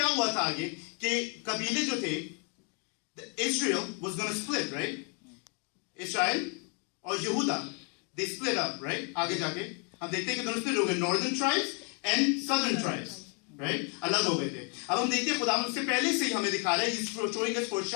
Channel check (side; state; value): right; quieter; 37.3 dB